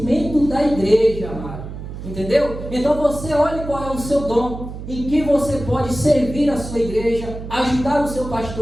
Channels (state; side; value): noise; right; hum, 10 dB below the sound